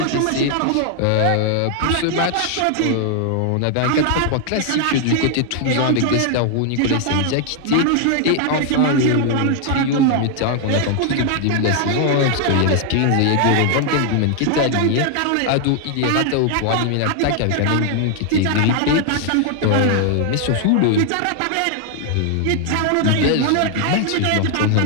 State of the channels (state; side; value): different; both; correlation 0.00